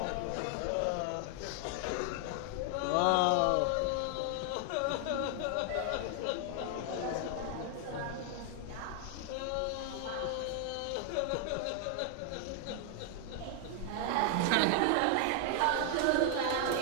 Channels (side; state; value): both; different; correlation 0.00